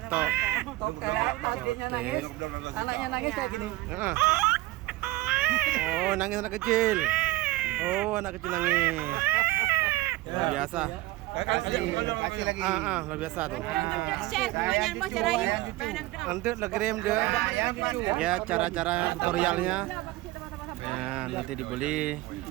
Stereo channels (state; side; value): quieter; left; 18.6 dB